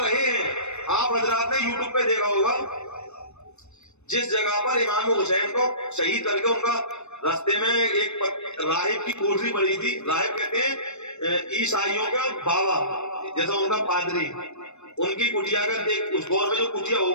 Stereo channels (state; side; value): late; right; 0.82 ms